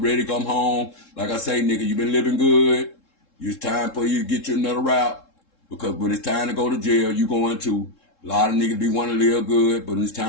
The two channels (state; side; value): late; right; 3.7 ms